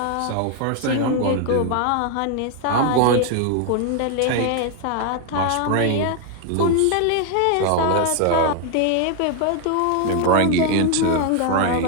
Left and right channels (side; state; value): both; different; correlation 0.00